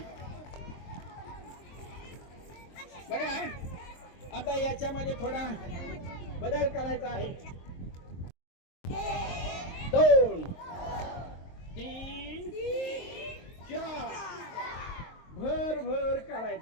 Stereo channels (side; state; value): right; late; 23 ms